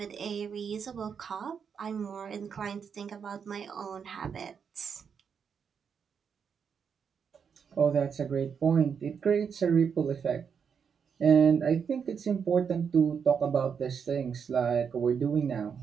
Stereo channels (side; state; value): left; quieter; 6.8 dB